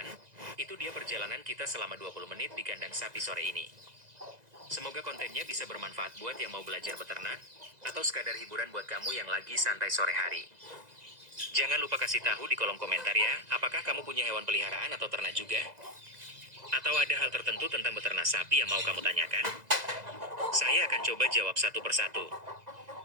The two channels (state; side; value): late; left; 2.0 ms